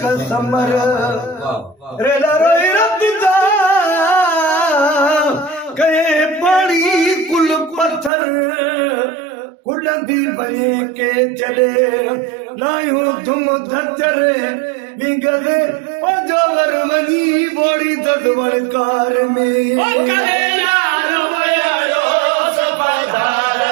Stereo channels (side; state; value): left; drops out; at 8.1 s